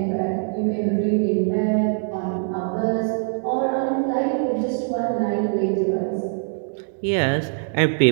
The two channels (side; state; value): left; silent; 59 dB below the other